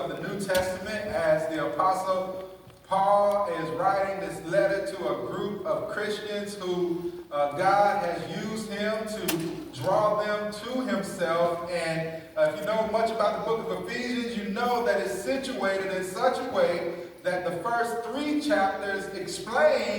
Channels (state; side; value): identical; both; correlation 1.00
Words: the New Testament as the Apostle Paul is writing this letter to a group of Christians who God has used him to draw them to himself. And if you know much about the book of Ephesians, you know that it's situated in such a way that the first 3 chapters